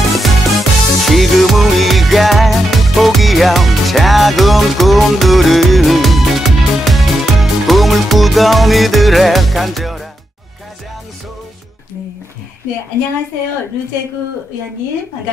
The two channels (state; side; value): normal; both; correlation 0.85